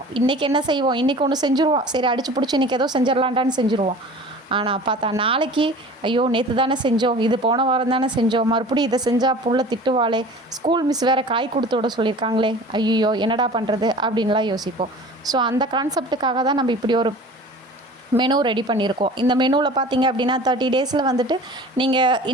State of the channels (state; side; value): normal; both; correlation 0.42